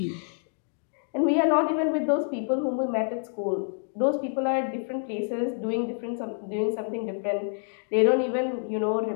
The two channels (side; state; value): right; silent; 60 dB below the other